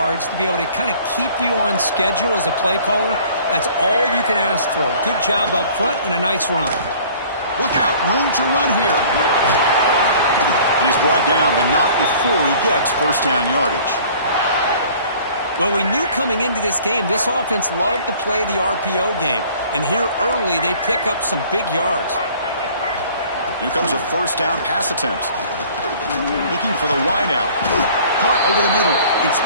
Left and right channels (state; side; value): inverted; both; correlation -0.51